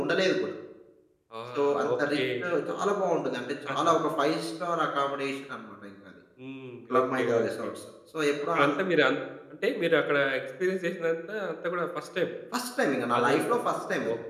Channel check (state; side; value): identical; both; correlation 1.00